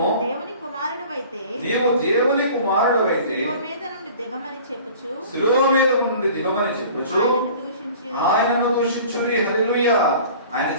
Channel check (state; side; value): inverted; both; correlation -0.45